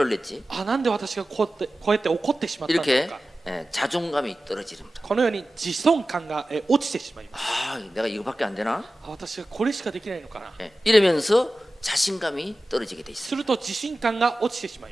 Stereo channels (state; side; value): normal; both; correlation 0.95